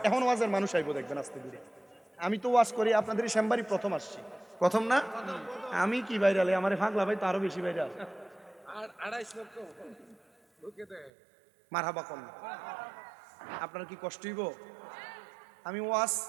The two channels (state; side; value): drops out; left; at 11.1 s